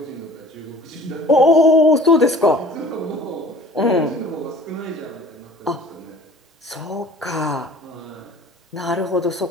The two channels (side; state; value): both; normal; correlation 0.46